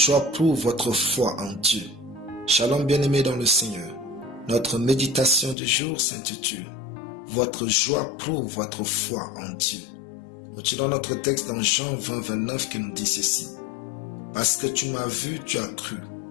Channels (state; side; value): drops out; right; at 5.6 s